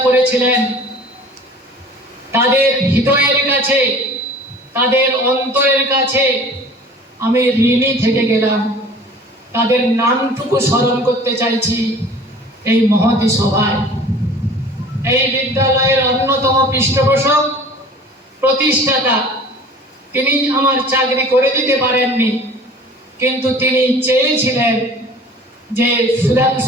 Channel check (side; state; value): both; normal; correlation 0.45